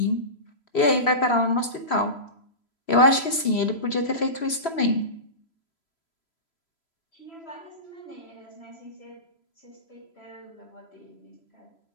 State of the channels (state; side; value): late; right; 3.0 ms